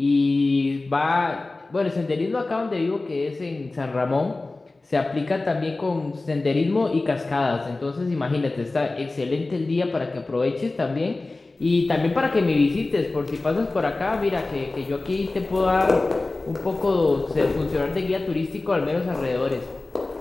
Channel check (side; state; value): right; quieter; 3.2 dB